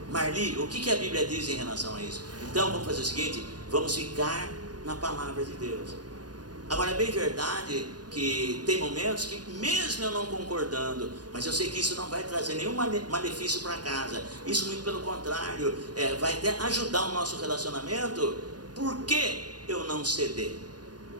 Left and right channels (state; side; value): late; left; 0.69 ms